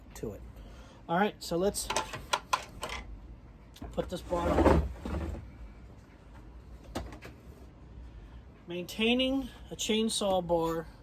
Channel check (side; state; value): both; identical; correlation 1.00